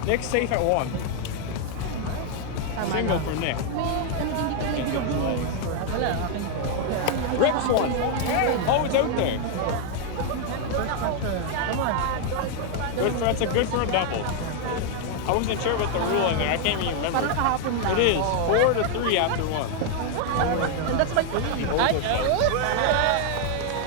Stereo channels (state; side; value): different; both; correlation 0.00